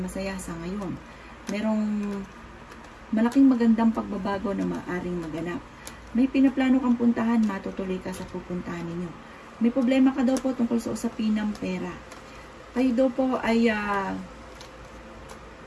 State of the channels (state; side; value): identical; both; correlation 1.00